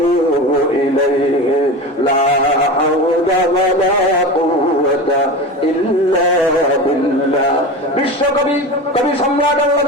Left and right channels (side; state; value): both; normal; correlation 0.28